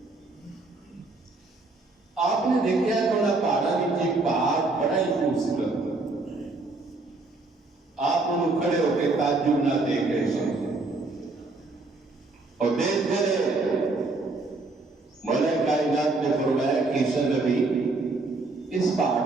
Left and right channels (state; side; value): quieter; left; 3.4 dB